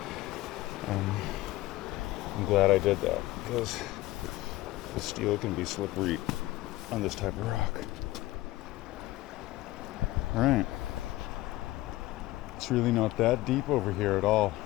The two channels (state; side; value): quieter; right; 17.6 dB